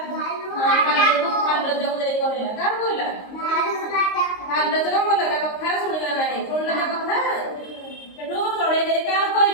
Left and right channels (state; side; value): late; right; 23 ms